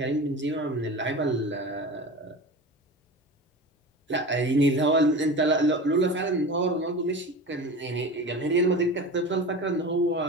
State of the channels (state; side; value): normal; both; correlation 0.32